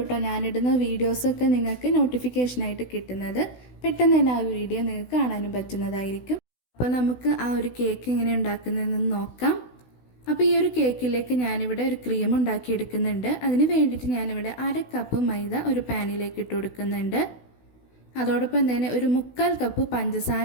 കേട്ടോ ഞാനിടുന്ന വീഡിയോസൊക്കെ നിങ്ങൾക്ക് നോട്ടിഫിക്കേഷനായിട്ട് കിട്ടുന്നത്. പെട്ടെന്ന് തന്നെ ആ വീഡിയോ നിങ്ങൾക്ക് കാണാനും പറ്റുന്നതായിരിക്കും. അപ്പോൾ നമുക്ക് ആ ഒരു കേക്ക് എങ്ങനെ ഉണ്ടാക്കുന്നതെന്ന് നോക്കാം. അപ്പോൾ ഈ ഒരു കേക്കിലേക്ക് ഞാനിവിടെ ഒരു ക്രീം ഉണ്ടാക്കിയെടുക്കുന്നുണ്ട്. അതിന് വേണ്ടിയിട്ട് ഞാനിവിടെ 1/2 കപ്പ് മൈദ ഒരു പാനിലേക്ക് ഇട്ട് കൊടുക്കുന്നുണ്ട്. അതോടൊപ്പം തന്നെ ഒരു 1/4 കപ്പ്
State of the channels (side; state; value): right; late; 16 ms